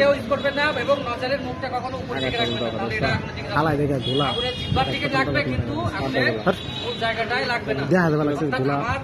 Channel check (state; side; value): identical; both; correlation 1.00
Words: ইউজ করবেন না এবং নজরের মুখটা কখনো উপর দিকে রাখবেন না, তাহলে এটা আগুনের জিহ্বার দিকে লাগবে কিন্তু আগুনের মূল জায়গাটাই লাগবে না। আমার